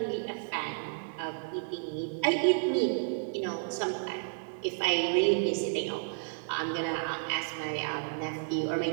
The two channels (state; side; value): silent; left; digital silence